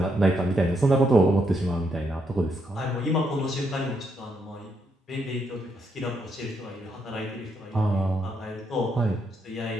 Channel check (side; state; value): both; normal; correlation 0.77